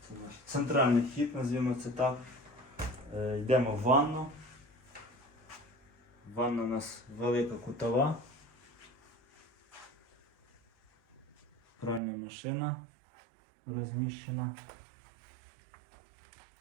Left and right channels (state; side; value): drops out; left; at 12.0 s